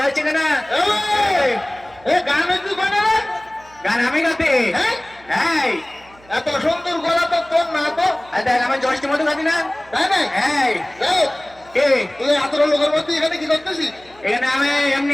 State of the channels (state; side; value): noise; right; hum, 26 dB below the sound